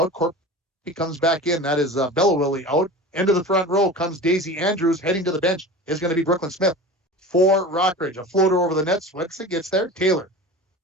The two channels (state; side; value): normal; both; correlation 0.34